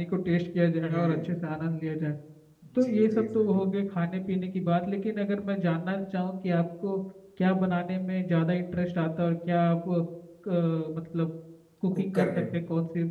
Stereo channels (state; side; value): identical; both; correlation 1.00